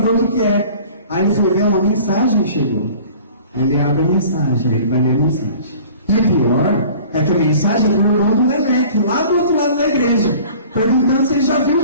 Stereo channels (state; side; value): inverted; both; correlation -0.47